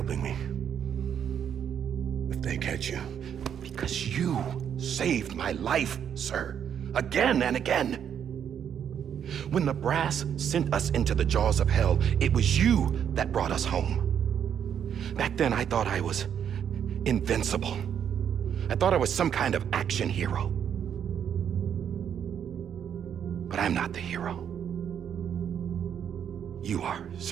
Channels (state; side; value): quieter; left; 8.6 dB